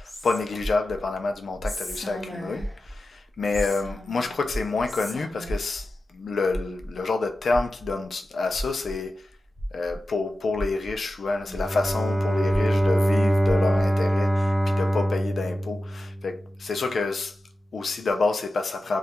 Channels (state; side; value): normal; both; correlation 0.93